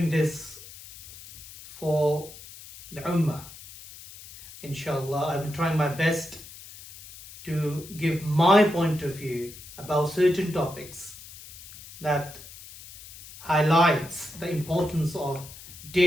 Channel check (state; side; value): noise; left; hiss, 17 dB below the sound